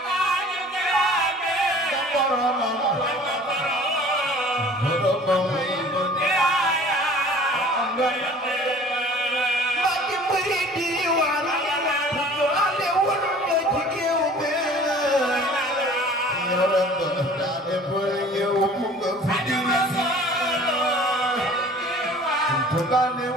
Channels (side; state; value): both; normal; correlation 0.48